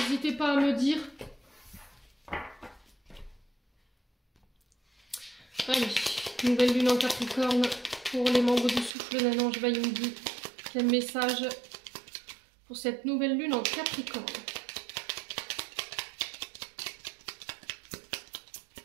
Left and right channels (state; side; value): drops out; left; at 8.9 s